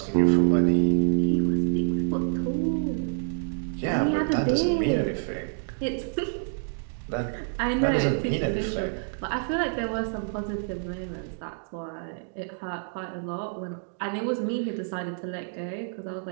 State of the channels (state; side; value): silent; left; digital silence